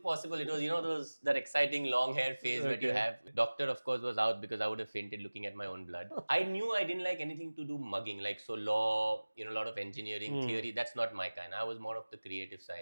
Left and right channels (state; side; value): inverted; both; correlation -1.00